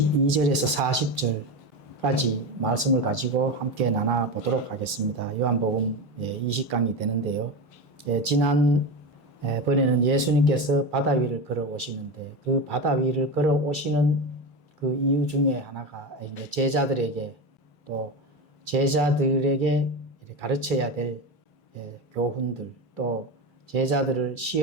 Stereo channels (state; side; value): normal; both; correlation 0.21